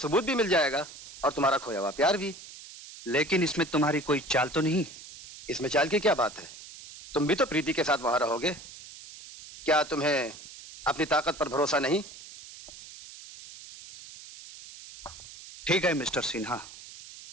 भी मिल जाएगा और तुम्हारा खोया हुआ प्यार भी। लेकिन इसमें तुम्हारी कोई चाल तो नहीं? इसमें चाल की क्या बात है? तुम भी तो प्रीति के साथ वहां रहोगे। क्या तुम्हें अपनी ताकत पर भरोसा नहीं? ठीक है मिस्टर सिन्हा,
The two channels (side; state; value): right; noise; hiss, 16 dB below the sound